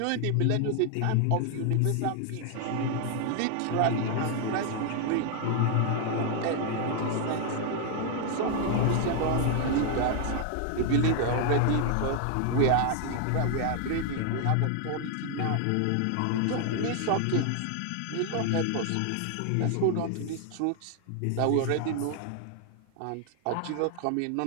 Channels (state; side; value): different; both; correlation 0.00